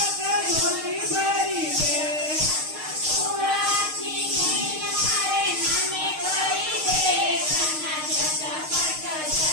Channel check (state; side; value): late; left; 6.5 ms